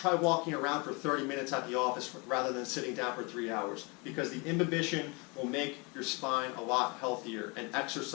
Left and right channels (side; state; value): right; quieter; 29.4 dB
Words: walking around for 30 minutes at the office rather than sitting down for 3 hours, because the imbibition will make your spine a lot healthier, and